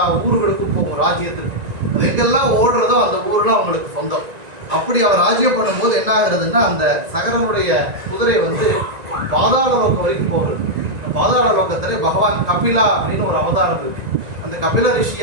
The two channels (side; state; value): left; late; 1.9 ms